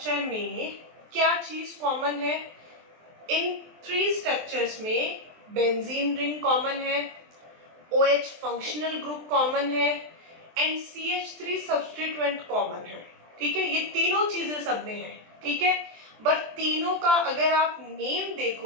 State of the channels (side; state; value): left; late; 23 ms